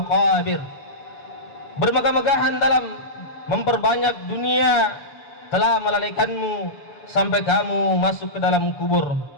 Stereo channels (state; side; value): late; right; 7.0 ms